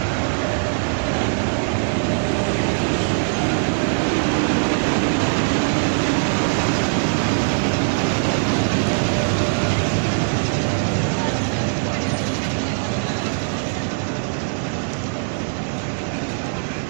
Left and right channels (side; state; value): left; silent; digital silence